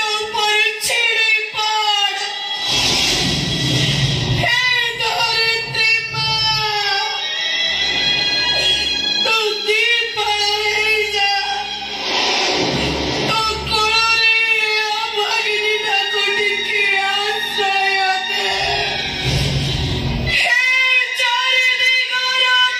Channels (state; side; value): identical; both; correlation 1.00